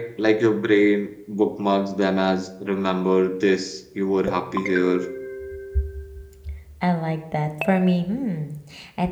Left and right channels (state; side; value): identical; both; correlation 1.00